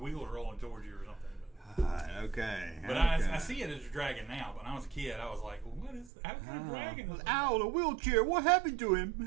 rolling towards you or something. Okay. But I see it as a dragon now. But when I was a kid, I was like, well, "What is? How kind of dragon is that?" Owl in a wheelchair. What happened to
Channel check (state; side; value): drops out; left; at 6.1 s